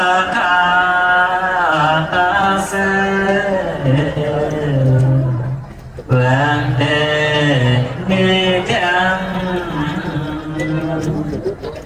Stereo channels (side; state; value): both; identical; correlation 1.00